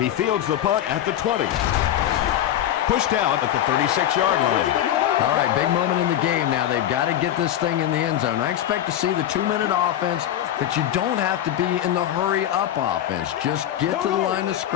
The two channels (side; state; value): right; quieter; 11.5 dB